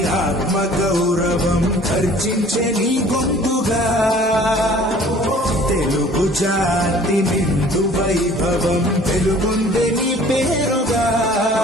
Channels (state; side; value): normal; both; correlation 0.51